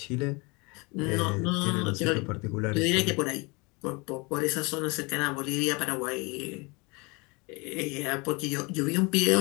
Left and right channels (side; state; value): right; quieter; 28.3 dB